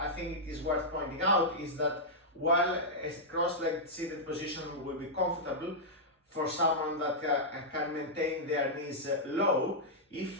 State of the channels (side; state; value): both; normal; correlation -0.08